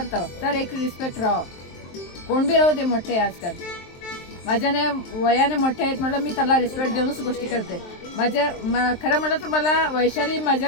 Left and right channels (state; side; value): late; right; 23 ms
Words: तर एक रिस्पेक्ट राहावं. कोण बी राहू दे मोठे. आजकाल माझ्याने वयाने मोठे आहेत म्हटलं मी त्याला रिस्पेक्ट देऊनच गोष्टी करते. खरं म्हटलं तर मला वैशाली